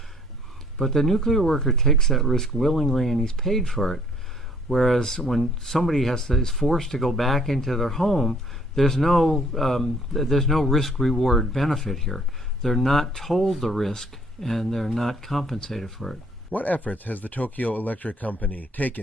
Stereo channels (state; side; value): normal; both; correlation 0.60